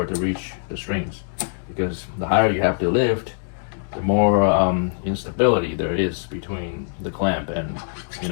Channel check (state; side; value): silent; right; digital silence